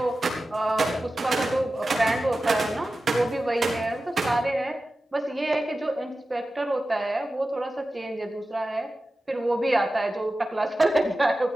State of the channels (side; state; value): both; normal; correlation 0.94